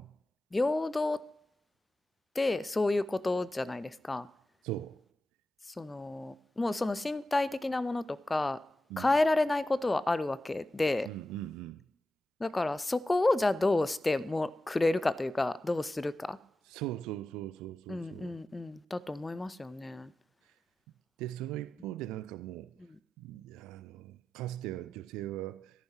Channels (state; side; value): normal; both; correlation 0.93